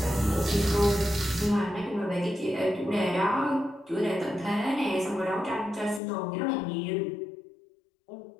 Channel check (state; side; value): drops out; right; at 6.0 s